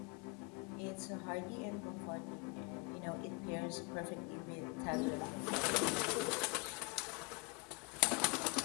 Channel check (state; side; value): quieter; right; 29.5 dB